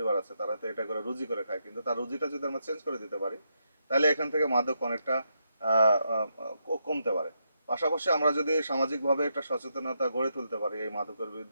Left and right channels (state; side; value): inverted; both; correlation -0.81